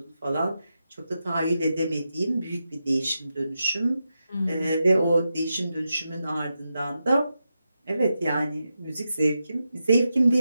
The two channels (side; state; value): both; inverted; correlation -0.88